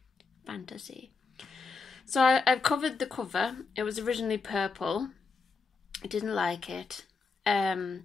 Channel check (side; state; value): right; quieter; 4.4 dB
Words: fantasy. So I've covered the cover. It was originally purple. I didn't like it.